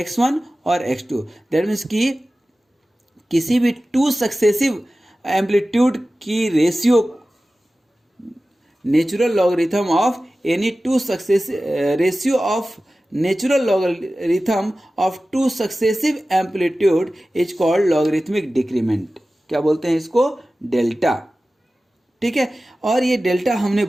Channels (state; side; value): normal; both; correlation 0.96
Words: और x2। दैट मीन्स कि किसी भी 2 सक्सेसिव एम्पलीट्यूड की ratio, natural logarithm of any 2 successive ratio of natural logarithm of 2 successive amplitude is called logarithmic decrement. क्या बोलते हैं इसको, डेल्टा, ठीक है। और ये डेल्टा हमने